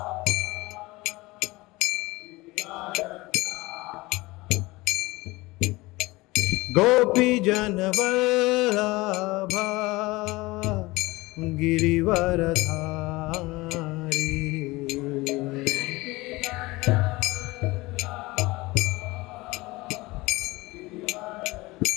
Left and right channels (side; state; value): right; quieter; 21.5 dB